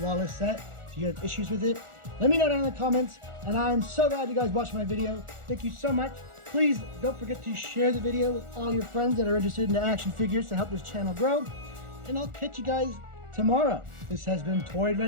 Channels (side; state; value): left; late; 1.4 ms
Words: set? Do you have issues with it? Let me know down in the comments, and I'm so glad you guys watched my video. Thank you so much. Please don't forget to share the video with all your friends that are interested in the action figures to help this channel grow, and I'll catch you guys tomorrow. This has been Toy